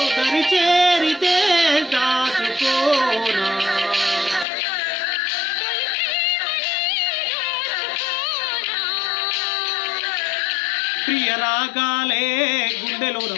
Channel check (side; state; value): right; drops out; at 4.5 s